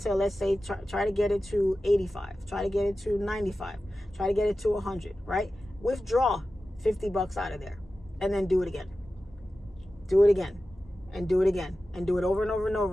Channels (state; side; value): normal; both; correlation 0.94